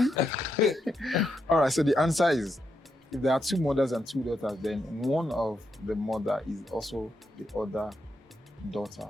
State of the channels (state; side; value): normal; both; correlation 0.82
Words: All right, so the answer is, if there are 2 mothers and 2 daughters, then one of the mother is also the other daughter